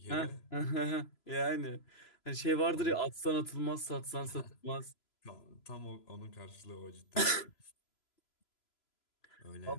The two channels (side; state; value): right; late; 3.0 ms